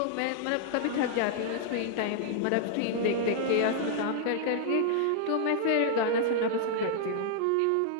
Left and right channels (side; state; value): both; different; correlation -0.01